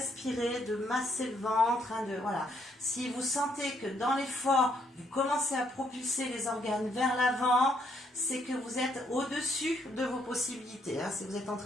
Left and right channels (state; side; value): normal; both; correlation 0.71